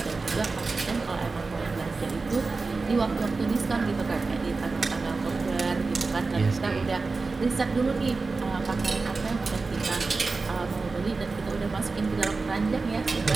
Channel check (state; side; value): quieter; left; 4.0 dB